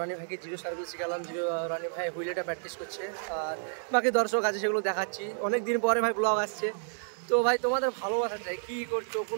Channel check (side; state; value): left; silent; digital silence